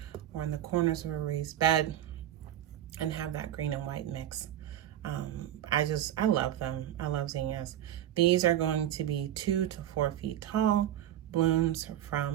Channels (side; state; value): left; quieter; 11.9 dB